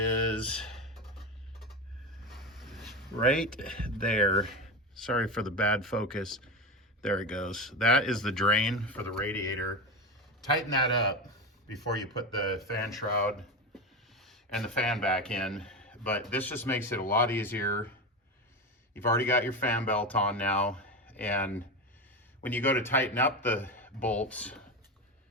right there. Sorry for the bad focus. There it goes. That is the drain for the radiator. Tighten that up before you put the fan shroud and the fan back in. But this just makes it a lot easier. You've already got your fan belt on now, and when you go to tighten up the bolts,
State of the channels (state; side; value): normal; both; correlation 0.20